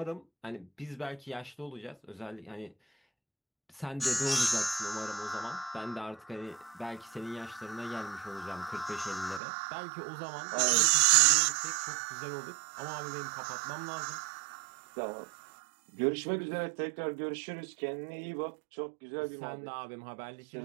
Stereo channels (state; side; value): drops out; left; at 9.4 s